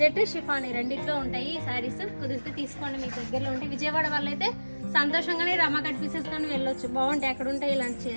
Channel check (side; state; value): both; inverted; correlation -1.00